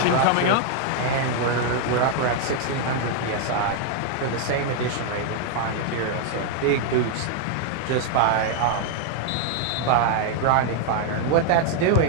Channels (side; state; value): both; different; correlation 0.00